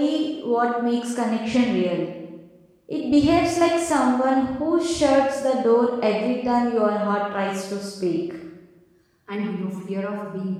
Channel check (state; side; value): identical; both; correlation 1.00